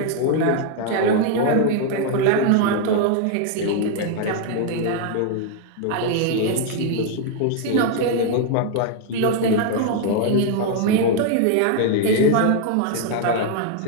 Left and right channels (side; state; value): both; different; correlation 0.00